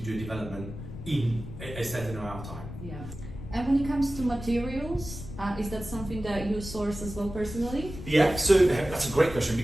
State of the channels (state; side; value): noise; left; rumble, 11 dB below the sound